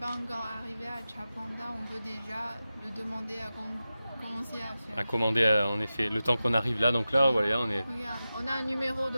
encore arrivé à Chapanda, on peut déjà le demander à commencer à faire. À commander en effet, le temps qu'on arrive là, donc là voilà on est... Regarde, on a un numéro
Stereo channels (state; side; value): inverted; both; correlation -0.94